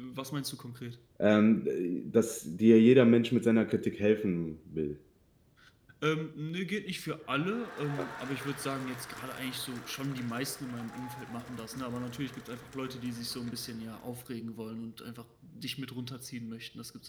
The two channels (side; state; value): both; identical; correlation 1.00